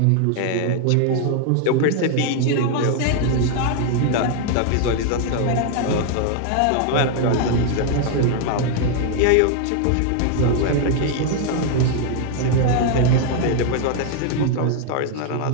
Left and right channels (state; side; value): different; both; correlation 0.00